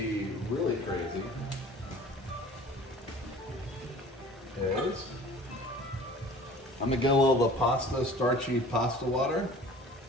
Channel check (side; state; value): both; normal; correlation 0.45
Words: really crazy is I'm going to get a little of the starchy pasta water.